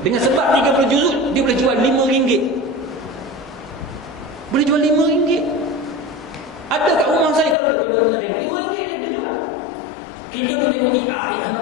Dengan sebab 30 juzuk, dia boleh jual RM5. Boleh jual RM5. Ada kat rumah saya kalau tuan nak tengok, RM5 ni dia jual. Kita duk tengok ni, nak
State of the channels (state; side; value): drops out; right; at 7.6 s